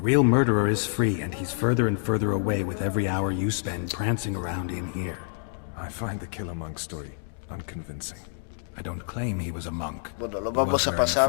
real murderer is free, and he's further and further away with every hour you spend prancing around in here. I find the Killer Monk story unconvincing. I don't claim he was a monk. Bueno, lo vamos a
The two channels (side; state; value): right; silent; digital silence